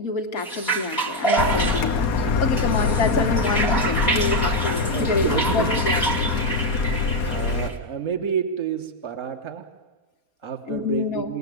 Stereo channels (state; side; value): late; right; 4.2 ms